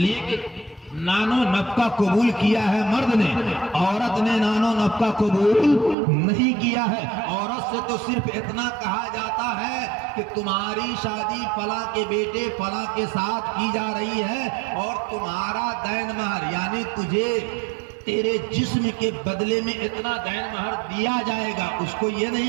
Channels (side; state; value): left; drops out; at 6.0 s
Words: کہ نانو نفقہ قبول کیا ہے مرد نے، عورت نے نانو نفقہ قبول نہیں کیا ہے۔ عورت سے تو صرف اتنا کہا جاتا ہے کہ تمہاری شادی فلاں کے بیٹے فلاں کے ساتھ کی جا رہی ہے اور تمہارا دین مہر یعنی تجھے تیرے جسم کے بدلے میں اتنا دین مہر دیا جائے گا، اس کو یہ